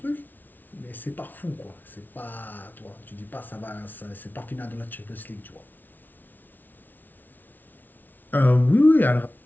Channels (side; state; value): right; late; 0.086 ms